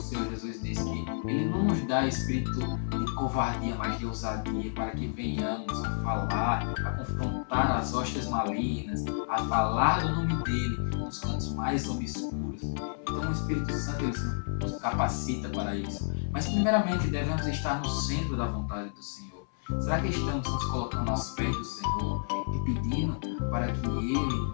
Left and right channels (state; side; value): silent; right; 56 dB below the other